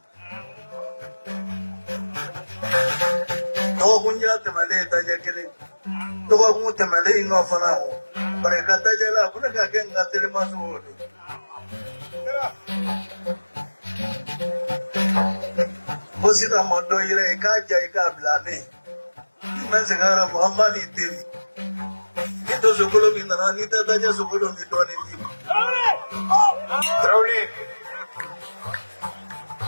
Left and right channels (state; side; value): inverted; both; correlation -1.00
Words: No Gunya Tamale Tajakili. No Gutamale no Fanao. But I got Tajala, Punaka again got Telemasu. Posita Mondo Ireka Jaika Blane. Mazagara Muhammad Tim. It was a column in the Anita Taja Sukulu in him. Truly.